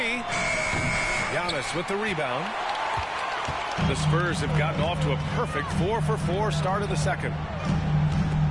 Giannis with the rebound. The Spurs have gotten off to a perfect 4-for-4 start of the second.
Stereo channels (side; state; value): both; identical; correlation 1.00